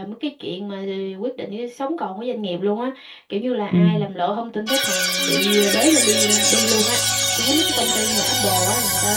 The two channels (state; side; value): identical; both; correlation 1.00